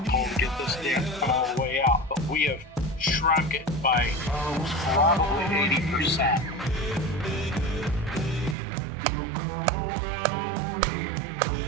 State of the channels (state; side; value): drops out; left; at 8.6 s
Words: pull to get this dent cut all the way out. But we have shrunk it by probably 80%.